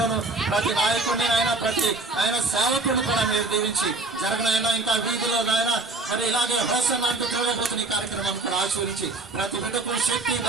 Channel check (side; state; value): left; quieter; 3.2 dB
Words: ప్రతి నాయకుడిని ప్రతి సేవకుడు కూడా మీరు దీవించి జరగనైనా ఇంకా వీధిలో నాయన మరి ఇలాగే హోసన్ అంటూ చూడబోతున్న ఈ కార్యక్రమాన్ని కూడా ఆశీర్వించి ప్రతి బిడ్డకు శక్తి